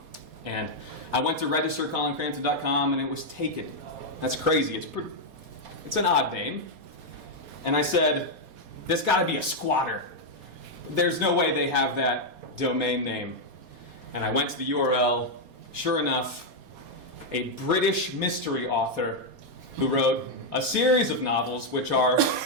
And I went to register ColinCrampton.com, and it was taken. That's crazy. It's an odd name. And I said, there's got to be a squatter. There's no way they have that domain name. And I went to the URL. Sure enough, a British mystery author who wrote a series of novels which are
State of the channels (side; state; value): left; late; 4.2 ms